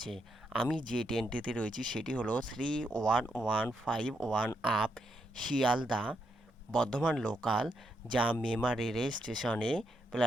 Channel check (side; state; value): both; normal; correlation 0.80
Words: আমি যে ট্রেনটিতে রয়েছি সেটি হলো 31151 আপ শিয়ালদা বর্ধমান লোকাল, যা মেমারি রেল স্টেশনে